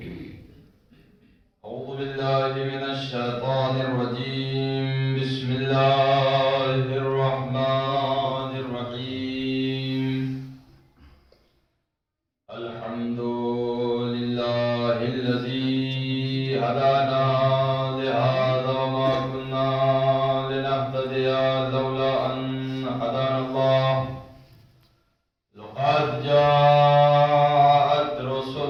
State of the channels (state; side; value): identical; both; correlation 1.00